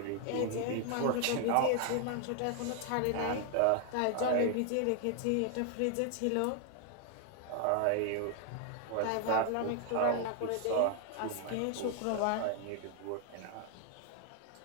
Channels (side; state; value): both; different; correlation 0.00